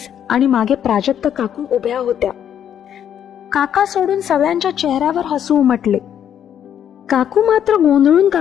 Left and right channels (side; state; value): right; quieter; 9.5 dB